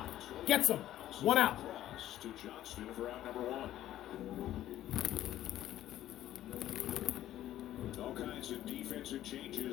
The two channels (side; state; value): right; quieter; 13.1 dB